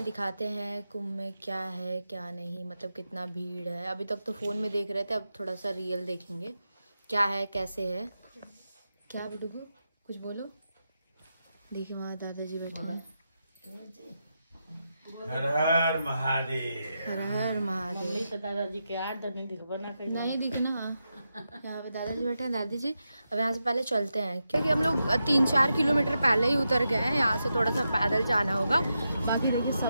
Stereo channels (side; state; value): both; inverted; correlation -0.87